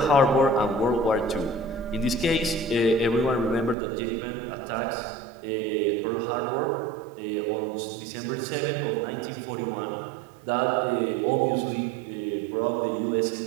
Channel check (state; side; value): drops out; left; at 3.8 s